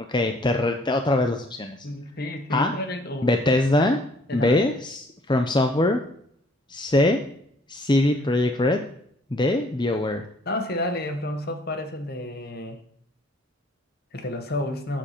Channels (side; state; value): both; normal; correlation 0.60